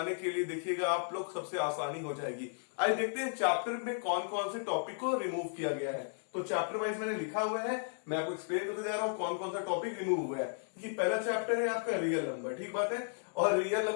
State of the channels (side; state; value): right; silent; digital silence